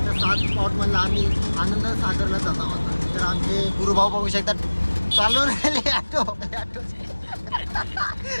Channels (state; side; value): inverted; both; correlation -1.00